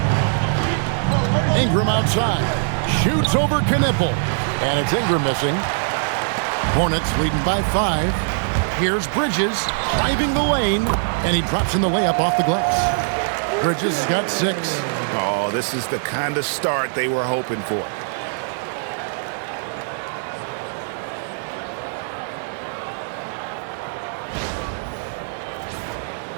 Ingram outside. Shoots over Knipple. And it's Ingram missing. Hornets leading by 5. Here's Bridges driving the lane, and he drops in the layup off the glass. Bridges has got 6. Oh, this is the kind of start they were hoping for.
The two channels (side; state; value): left; silent; 64 dB below the other